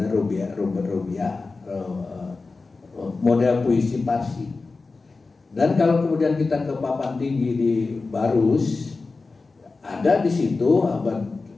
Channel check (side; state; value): right; quieter; 3.9 dB